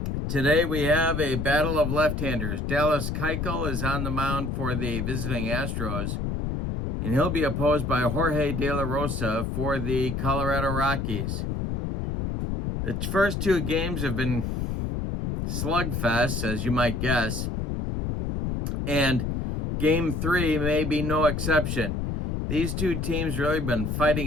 Today we have a battle of left-handers. Dallas Keuchel is on the mound for the visiting Astros, and he'll be opposed by Jorge De La Rosa for the Colorado Rockies. The first two games have been slugfests, as you might guess, and Game 3 may be no exception. These two teams really been fighting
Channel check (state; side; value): noise; left; rumble, 2 dB below the sound